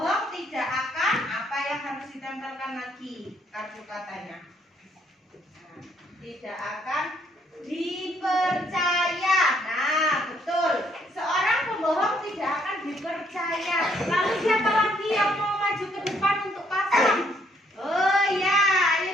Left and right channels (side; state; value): both; normal; correlation 0.69